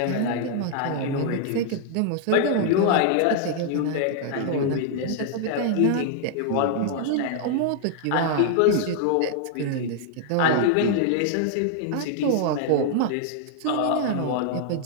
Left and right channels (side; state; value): both; different; correlation -0.01